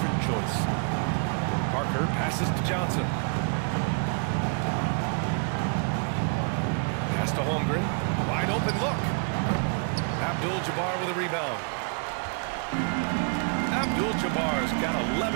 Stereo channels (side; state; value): left; quieter; 39.5 dB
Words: choice. Parker passes to Johnson. Pass to Holmgren. Wide open look. Abdul-Jabbar with a rebound. Abdul-Jabbar's got